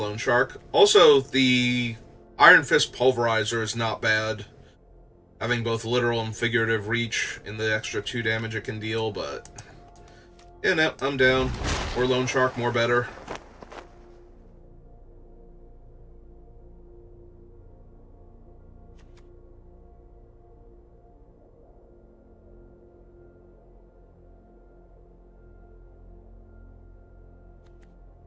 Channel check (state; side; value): identical; both; correlation 1.00